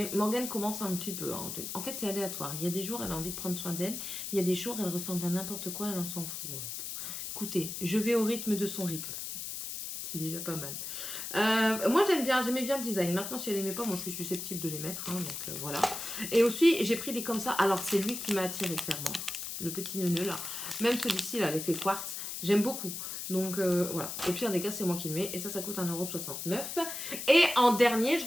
Morgane commence un petit peu. Hein. En fait c'est aléatoire. Il y a des jours elle a envie de prendre soin d'elle. Il y a des jours elle ressemble à n'importe quoi, elle en s'en fout. Écoutez, je vais au rythme de son rythme. C'est déjà pas mal. Moi j'aimais bien le design. Maintenant si elle aimait pas, moi je suis susceptible de les mettre. Hein, donc voilà. Et aussi j'ai pris des comme ça. Alors c'est lui qui m'a attiré clairement. Le petit neuneu là. Même celui-ci là, l'effet quartz. J'aime beaucoup. Donc voilà. Au pire des cas c'est moi qui le mets. Et ça coûte 1,69 €. Et en dernier, je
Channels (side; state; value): left; noise; hiss, 6 dB below the sound